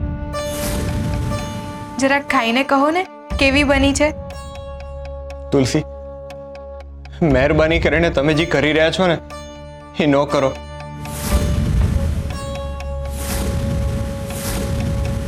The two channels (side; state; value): both; identical; correlation 1.00